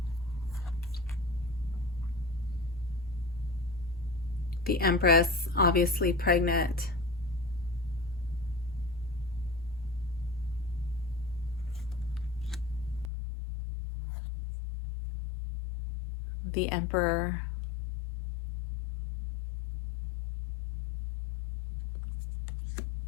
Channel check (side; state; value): right; drops out; at 13.1 s